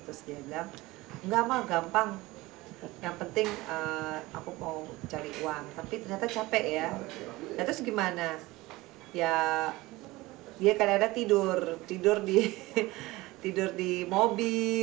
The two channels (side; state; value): left; quieter; 20.1 dB